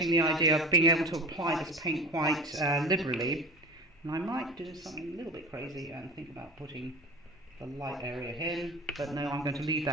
the idea of being able to apply this paint quite liberally. And I might do something a little bit crazy and think about putting the light area in, but no, I'm going to leave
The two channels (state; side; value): normal; both; correlation 0.34